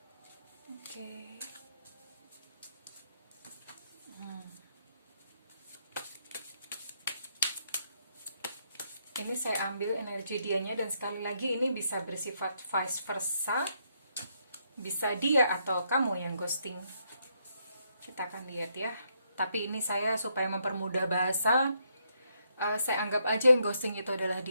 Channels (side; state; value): both; inverted; correlation -0.76